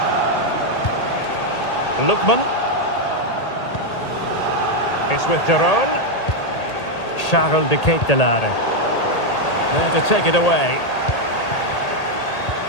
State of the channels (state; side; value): late; right; 1.8 ms